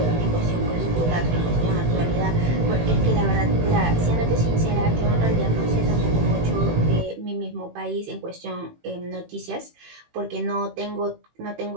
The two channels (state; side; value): late; left; 18 ms